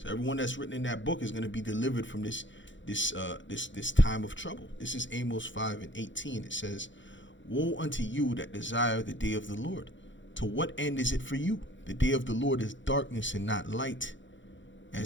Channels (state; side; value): late; right; 0.54 ms